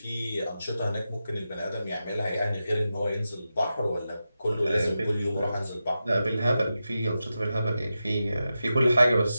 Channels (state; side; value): inverted; both; correlation -0.91